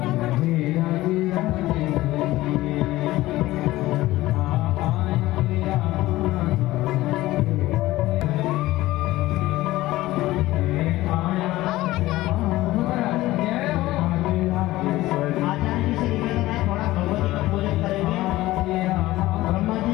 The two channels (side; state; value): right; quieter; 17.2 dB